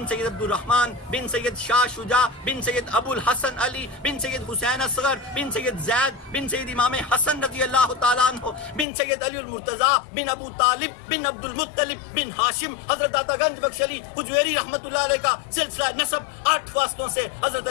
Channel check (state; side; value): drops out; right; at 8.8 s